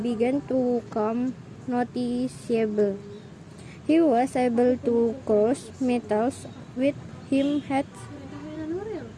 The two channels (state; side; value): identical; both; correlation 1.00